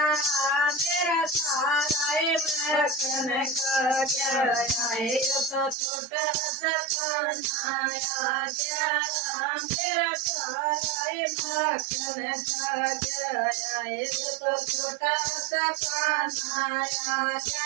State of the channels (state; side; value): drops out; left; at 5.8 s